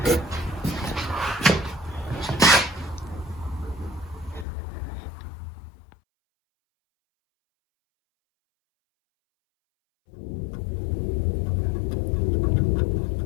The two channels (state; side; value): drops out; right; at 4.5 s